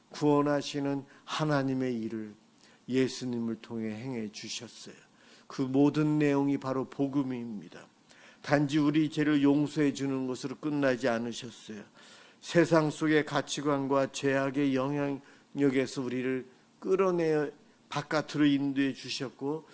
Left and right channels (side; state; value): both; identical; correlation 1.00